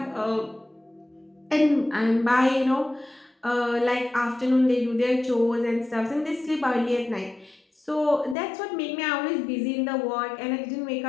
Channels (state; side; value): drops out; right; at 8.3 s